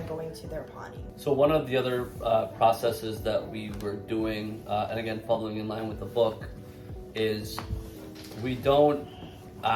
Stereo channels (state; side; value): identical; both; correlation 1.00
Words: going to their potty. So one of the other processes that we were doing, and again following in line with the book, is we don't